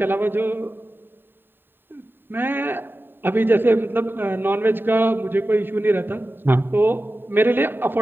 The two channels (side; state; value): left; late; 0.097 ms